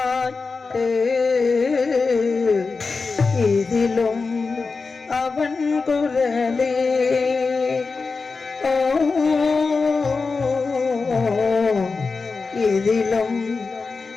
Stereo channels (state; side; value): quieter; right; 4.4 dB